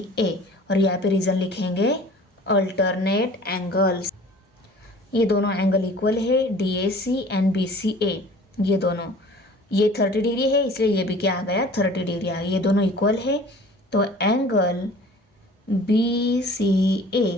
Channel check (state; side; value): normal; both; correlation 0.47